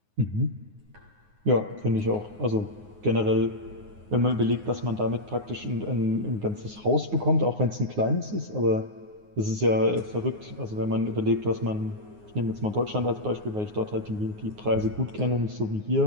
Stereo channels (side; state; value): left; late; 9.6 ms